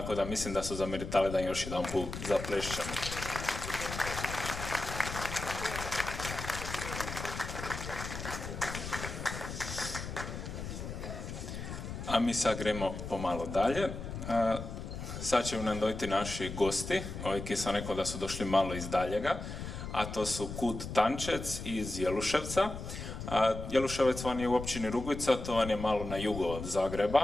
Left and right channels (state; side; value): noise; left; rumble, 7 dB below the sound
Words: da mislim da su zameritali da još jedan put zaplešćemo. A mi sad gremo pomalo dalje. Sad će nam dojti naši gosti, ovi ki sam rekao da su došli malo iz daljega, a to su Kud Tančec iz Jeluševca. Jeluševec vam je u općini Rugvica, to vam je malo na jugo od